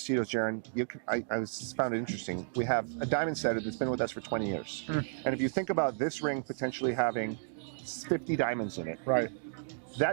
Jaron, I found it interesting. We have a diamond setter that's been with us for 20 years. And if you think about this ring potentially having 50 diamonds in it. Right.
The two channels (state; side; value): silent; left; digital silence